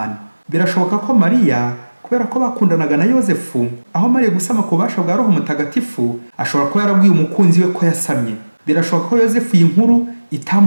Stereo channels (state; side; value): inverted; both; correlation -1.00